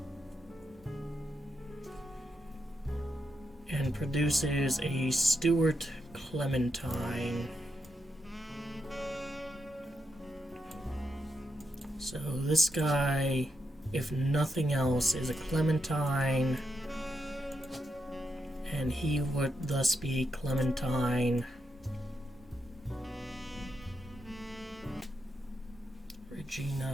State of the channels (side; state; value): both; normal; correlation 0.83